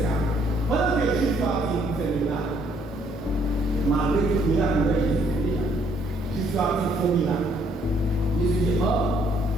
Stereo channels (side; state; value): both; normal; correlation 0.66